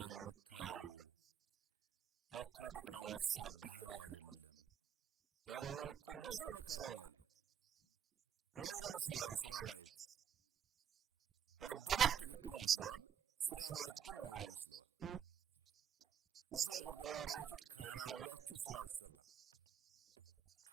የምታየው? ይህ እኮ የጠቅላይ ሚኒስትር ባህሪ አይደለም የሚል እኮ ብዙ መካሪ ነው ያለው። ነውር ይመስለዋል ስራ ማየት፣ መደበቅ ትክክል ይመስለዋል፣ ስራ ማየት ግን ነውር ይመስለዋል። እዚህ ሀገር ደግሞ እንዳያችሁት ካላያችሁት ስራ አይሰራም።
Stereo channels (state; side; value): quieter; left; 8.3 dB